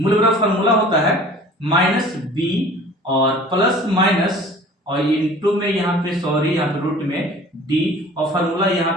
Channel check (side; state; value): both; normal; correlation 0.46